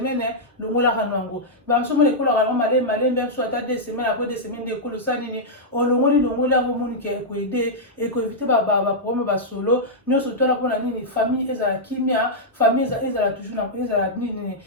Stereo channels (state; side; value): normal; both; correlation -0.07